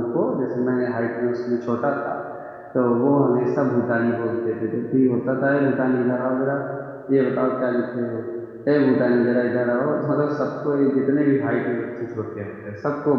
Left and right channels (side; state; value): both; identical; correlation 1.00